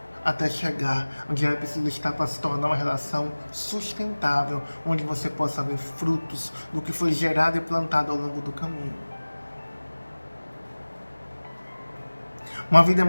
até chegar onde ela precisa estar para se tornar uma relação sustentável, onde você possa ver frutos do que foi gerado e plantado ao longo do caminho. Uma vida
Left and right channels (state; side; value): inverted; both; correlation -1.00